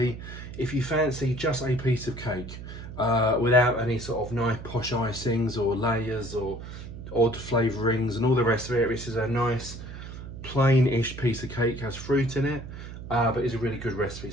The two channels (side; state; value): right; noise; hum, 11 dB below the sound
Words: If you fancy just a piece of cake without any sort of nice posh icings or layers or odd flavourings and all the rest of it, this is a nice plain-ish piece of cake. Has fruit in it, but it's a really good recipe.